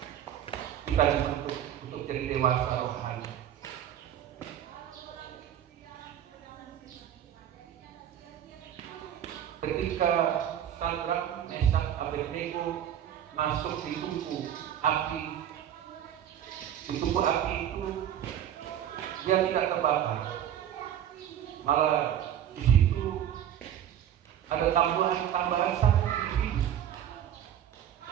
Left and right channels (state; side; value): quieter; left; 10.4 dB